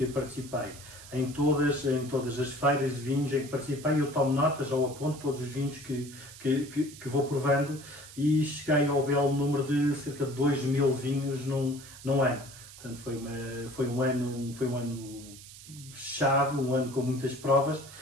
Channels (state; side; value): noise; right; hiss, 17 dB below the sound